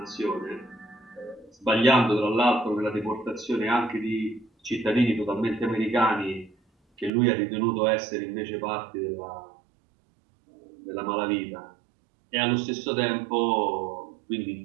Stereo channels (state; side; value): drops out; left; at 7.1 s